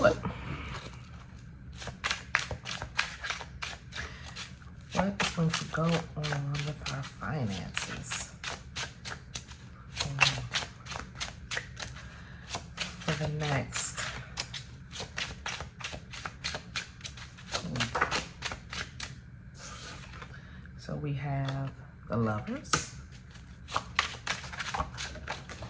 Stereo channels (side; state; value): both; identical; correlation 1.00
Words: it. What is going to go on with our finances for the next week? So we have the Lovers,